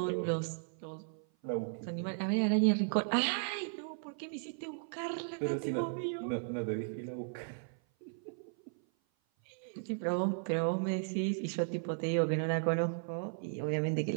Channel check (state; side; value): silent; left; 54 dB below the other